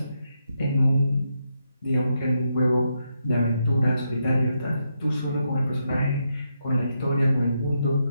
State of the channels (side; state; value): both; inverted; correlation -0.82